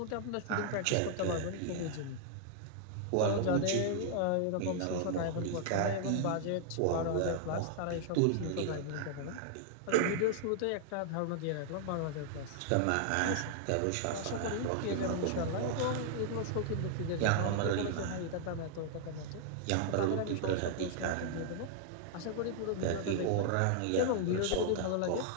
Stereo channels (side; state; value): both; different; correlation -0.01